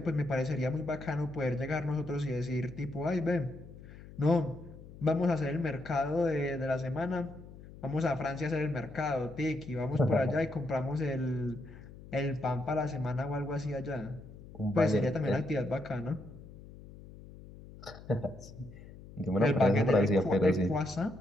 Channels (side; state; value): left; noise; hum, 17 dB below the sound